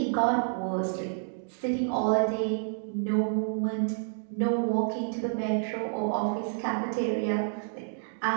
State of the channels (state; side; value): silent; left; digital silence